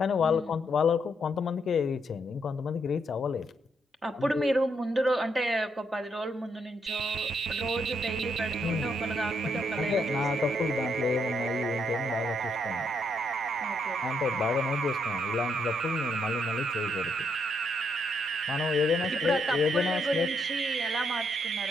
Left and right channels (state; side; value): normal; both; correlation 0.75